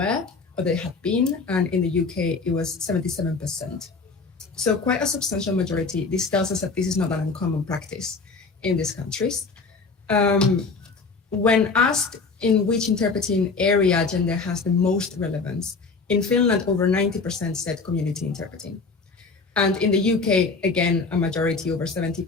or they had been, and in the UK, it was 77%. So quite a substantial majority. This tells us that this is not an uncommon practice in these countries. When asked in which interpreting area gender has the most relevance, in Finland, over 90% said community interpreting. And in the UK, again, a majority, over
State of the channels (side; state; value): right; quieter; 4.3 dB